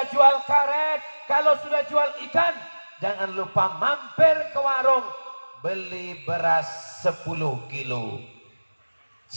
jual karet, kalau sudah jual ikan, jangan lupa mampir ke warung, beli beras 10 kilo.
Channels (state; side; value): inverted; both; correlation -1.00